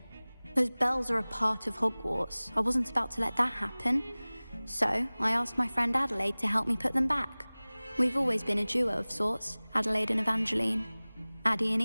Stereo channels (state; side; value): inverted; both; correlation -1.00